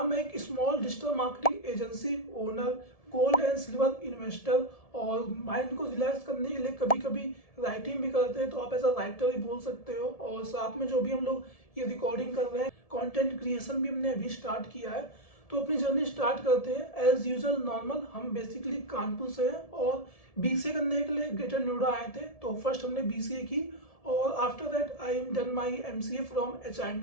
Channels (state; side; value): late; right; 1.7 ms